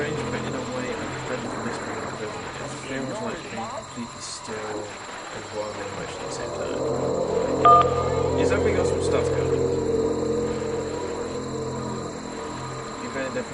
but in a way, I'm ready for this kind of prison. It feels like being completely still and wild and emotional at the same time. Is that we got some stuff going? You're very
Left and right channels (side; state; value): both; identical; correlation 1.00